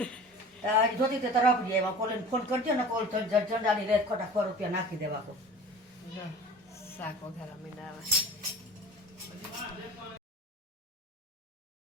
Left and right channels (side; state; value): both; normal; correlation 0.40